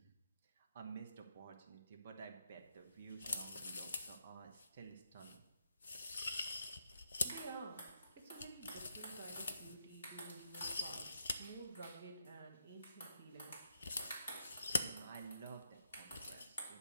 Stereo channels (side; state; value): both; inverted; correlation -0.79